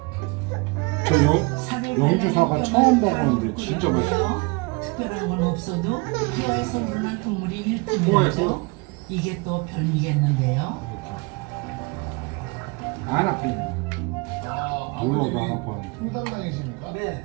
저 영주사가 처음 먹었는데 진짜 맛있어. 특별한 건 없어도 뼈에서 우러난 국물이 일품이죠. 뼈에서? 이게 또 별미겠는데요. 안 아프네. 물어도 안 아파. 풍담당이십니까?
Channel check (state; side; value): quieter; left; 28.6 dB